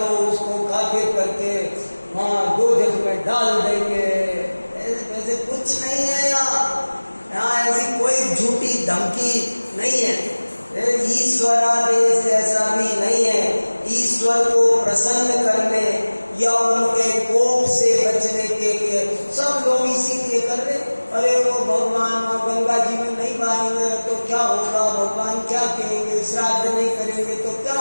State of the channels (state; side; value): inverted; both; correlation -1.00